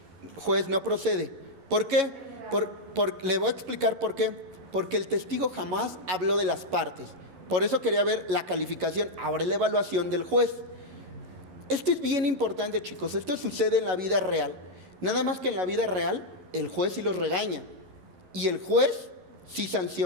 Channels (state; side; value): late; left; 11 ms